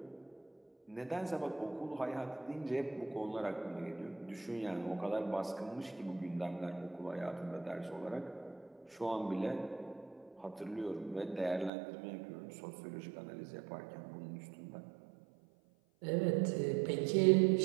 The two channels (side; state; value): left; drops out; at 11.7 s